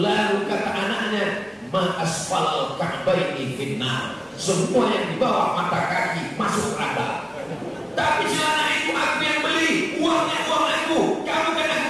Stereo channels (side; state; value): both; identical; correlation 1.00